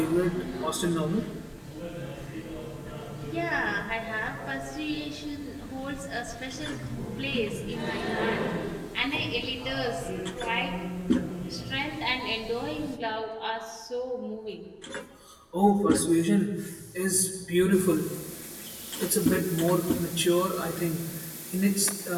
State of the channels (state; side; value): identical; both; correlation 1.00